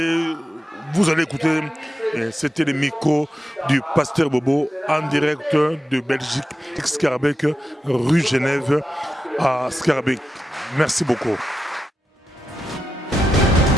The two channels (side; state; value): both; normal; correlation 0.89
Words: vous allez écouter. C'était le micro du pasteur Bobo en direct de Belgique, Scarbeck, rue Genève à Scarbeck. Merci beaucoup.